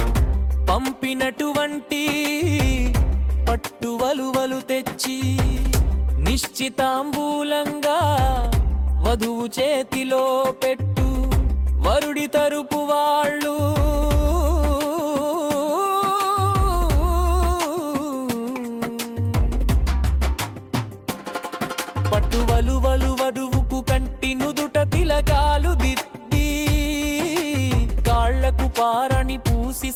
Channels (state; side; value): identical; both; correlation 1.00